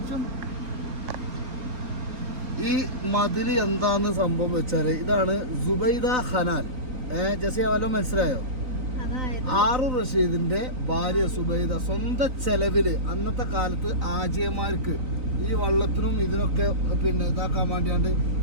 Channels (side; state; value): left; late; 3.7 ms